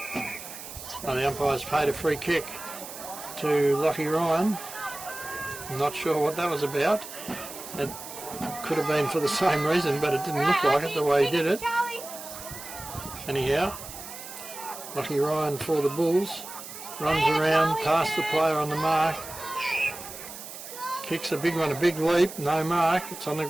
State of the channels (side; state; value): right; noise; hiss, 12 dB below the sound